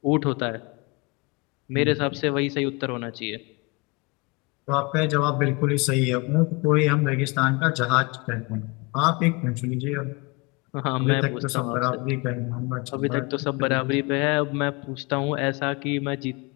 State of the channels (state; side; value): quieter; right; 27.8 dB